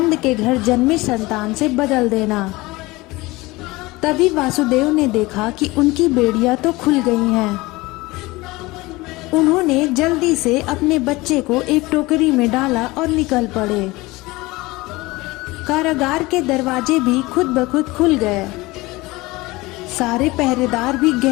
के घर जन्मे संतान से बदल देना। तभी वासुदेव ने देखा कि उनकी बेड़ियां तो खुल गई हैं। उन्होंने जल्दी से अपने बच्चे को एक टोकरी में डाला और निकल पड़े। कारागार के दरवाजे भी खुद ब खुद खुल गए। सारे पहरेदार भी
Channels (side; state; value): right; quieter; 21.4 dB